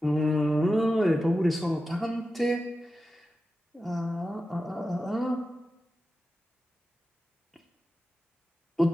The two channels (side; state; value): both; normal; correlation 0.92